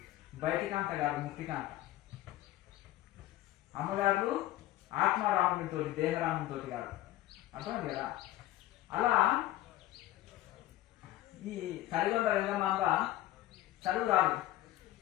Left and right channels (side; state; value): right; quieter; 15.1 dB